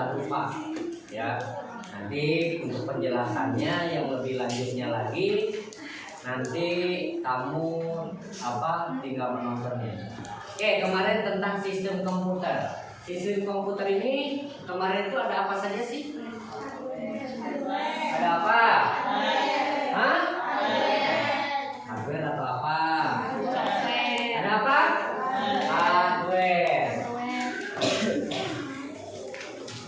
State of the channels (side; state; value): both; identical; correlation 1.00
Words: lupa, ya. Nanti untuk penjelasannya yang lebih lanjutnya lagi, nanti kamu tinggal menontonnya. Oke, kemarin tentang sistem komputer. Sistem komputer ini kemarin itu ada apa saja sih? Ada apa? Hah? Hardware atau apa? Ada apa? Hardware.